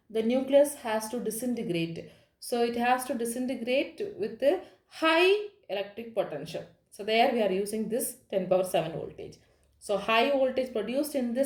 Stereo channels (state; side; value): identical; both; correlation 1.00